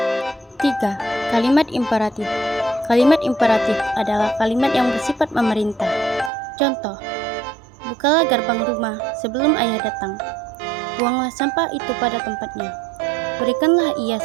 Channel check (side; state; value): left; drops out; at 6.3 s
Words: 3. Kalimat imperatif. Kalimat imperatif adalah kalimat yang bersifat memerintah. Contoh, bukalah gerbang rumah sebelum ayah datang. Buanglah sampah itu pada tempatnya. Berikanlah ia